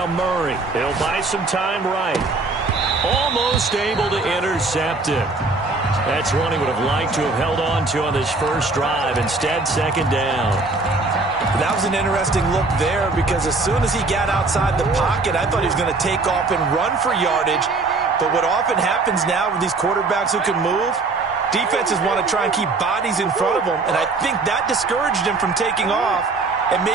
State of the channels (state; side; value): quieter; left; 3.6 dB